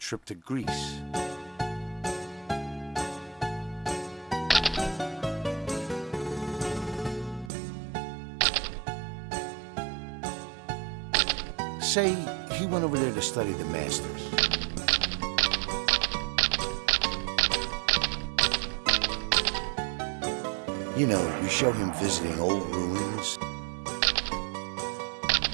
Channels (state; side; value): drops out; left; at 7.5 s